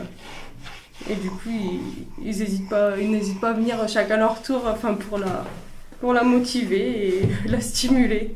et du coup, ils n'hésitent pas à venir chacun leur tour, enfin pour la motiver et la stimuler.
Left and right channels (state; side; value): identical; both; correlation 1.00